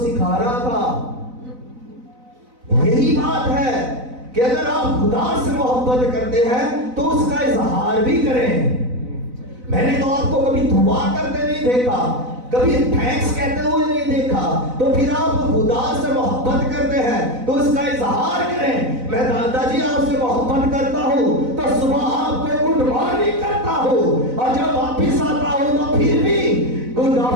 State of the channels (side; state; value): left; late; 4.0 ms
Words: रहा था, यही बात है कि अगर आप खुदा से मोहब्बत करते हैं तो उसका इजहार भी करें। मैंने तो आपको कभी दुआ करते नहीं देखा, कभी थैंक्स कहते हुए नहीं देखा, तो फिर आप खुदा से मोहब्बत करते हैं तो उसका इजहार करें। मैं दादाजी आपसे मोहब्बत करता हूं तो सुबह आपको गुड मॉर्निंग करता हूं, और जब वापिस आता हूं तो फिर भी गुड